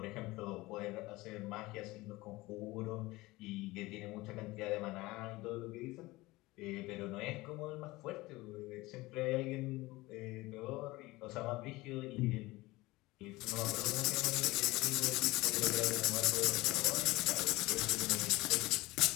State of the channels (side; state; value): right; quieter; 20.4 dB